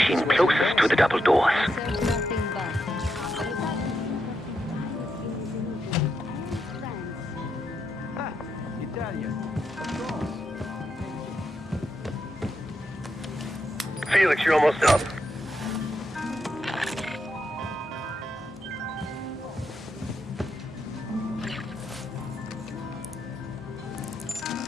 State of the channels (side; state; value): both; normal; correlation 0.83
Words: closest to the double doors. Felix, you're almost up.